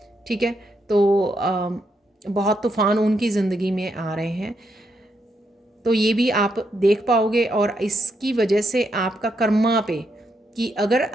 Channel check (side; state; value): both; normal; correlation 0.79